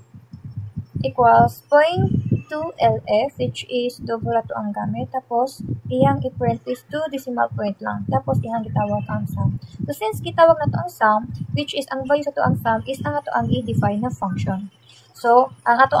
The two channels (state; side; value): identical; both; correlation 1.00